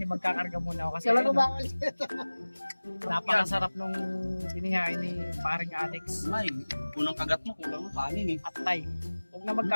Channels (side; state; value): both; inverted; correlation -1.00